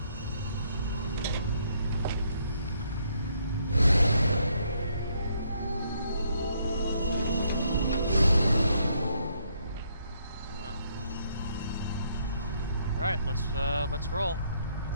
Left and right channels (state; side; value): inverted; both; correlation -0.71